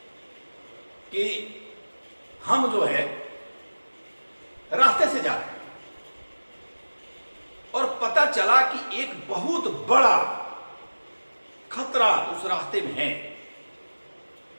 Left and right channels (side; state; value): both; inverted; correlation -1.00